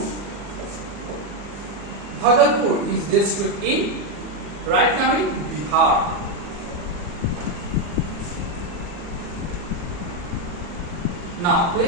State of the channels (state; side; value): late; left; 40 ms